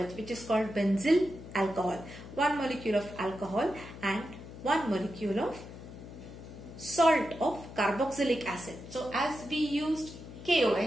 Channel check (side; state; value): left; noise; hum, 14 dB below the sound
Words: which is called benzyl alcohol. One molecule of alcohol and one molecule of salt of carboxylic acid. So as we used